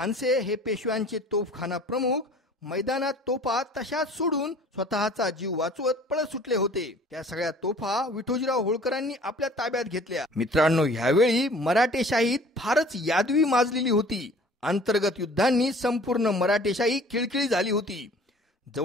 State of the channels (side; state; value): both; normal; correlation 0.49